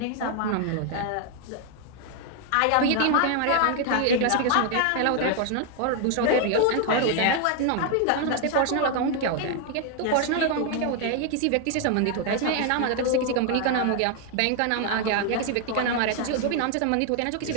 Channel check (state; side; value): different; both; correlation 0.00